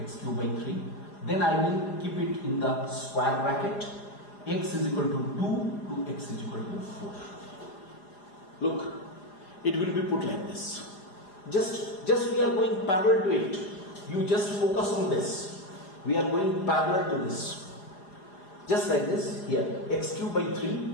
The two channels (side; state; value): right; late; 4.9 ms